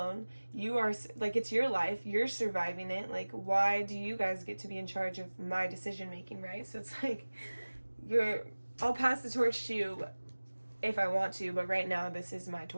You are like it's your life. You're surviving it. Like why do you guys get to be in charge of my decision making, right? So it's like I'll pass the torch to you if I want to, but right now this is my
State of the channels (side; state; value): both; inverted; correlation -1.00